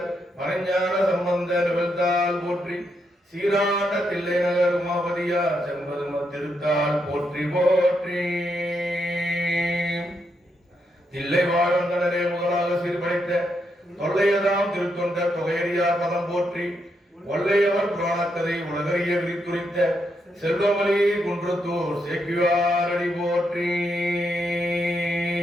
மறைஞான சம்பந்த நிகழ்த்தால் போற்றி, சீராண்ட தில்லை நகர் உமாபதியார் செம்பதும திருத்தால் போற்றி போற்றி. தில்லை வாழ்ந்தனரே முதலாக சீர்படைத்த தொல்லையதாம் திருத்தொண்ட தொகையடியார் பதம் போற்றி, ஒல்லையவர் புராணக்கதை உலகறிய விரித்துரைத்த செல்வமலி குன்றத்தூர் சேக்கிவாரடி போற்றி.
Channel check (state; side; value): normal; both; correlation 0.80